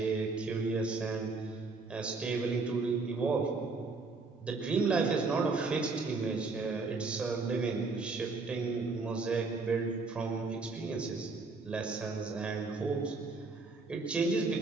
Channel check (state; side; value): quieter; left; 3.9 dB